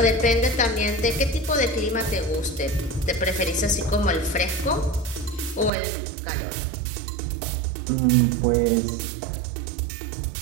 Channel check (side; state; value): left; drops out; at 5.7 s